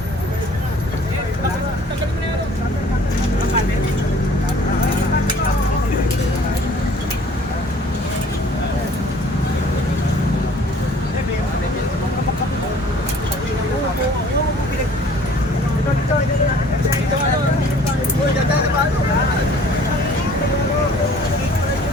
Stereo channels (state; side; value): normal; both; correlation 0.53